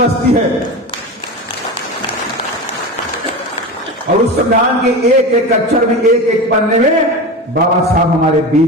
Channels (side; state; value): both; normal; correlation 0.26